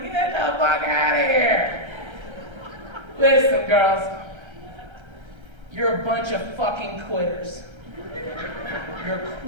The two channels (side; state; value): left; late; 1.3 ms